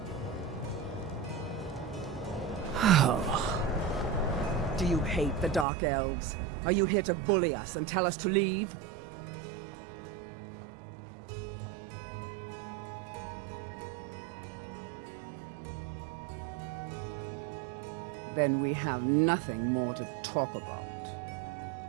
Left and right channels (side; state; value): left; drops out; at 5.7 s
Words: Do you hate the Dark Elves? Are you here to bully us and tell us to leave? Then we have nothing more to talk about.